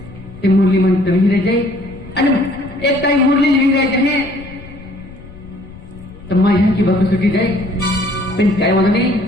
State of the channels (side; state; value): left; noise; rumble, 18 dB below the sound